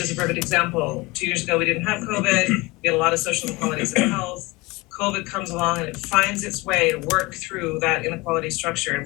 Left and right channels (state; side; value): quieter; right; 23.2 dB